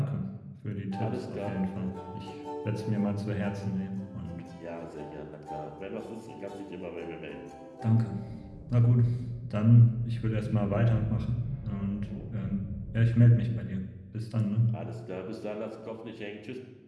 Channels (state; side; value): identical; both; correlation 1.00